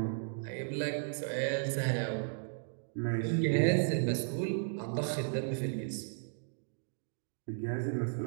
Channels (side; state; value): left; silent; digital silence